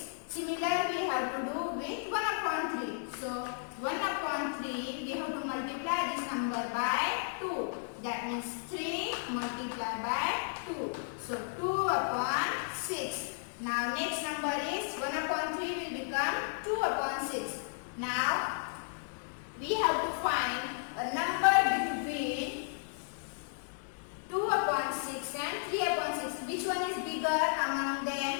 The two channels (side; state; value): right; silent; digital silence